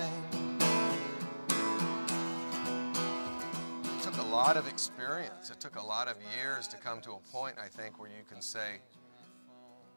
It took a lot of experience. It took a lot of years to come to a point, I think, where you can say,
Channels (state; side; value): inverted; both; correlation -1.00